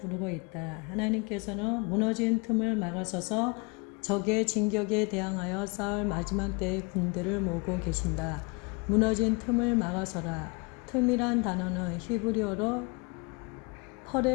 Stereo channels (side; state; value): right; quieter; 30.1 dB